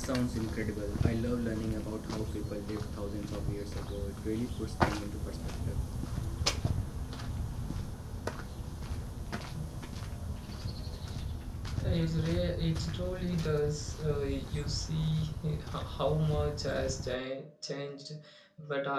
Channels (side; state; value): both; identical; correlation 1.00